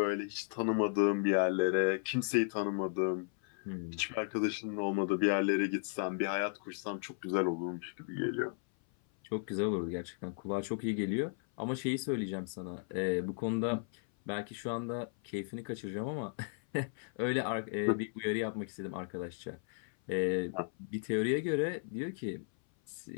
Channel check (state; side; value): silent; right; 54 dB below the other